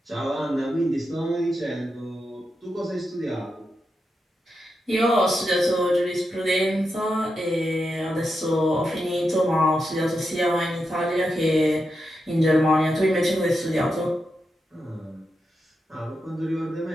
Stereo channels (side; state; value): both; normal; correlation 0.87